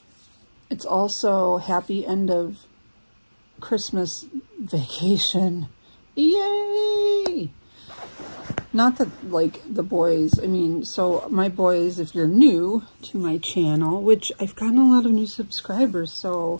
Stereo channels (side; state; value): both; inverted; correlation -1.00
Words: It's also happy end of Christmas vacation. Yay! Not that, like, the boys, I mean, so my boys, if you're new to my channel, which I've gotten a lot of new subscribers,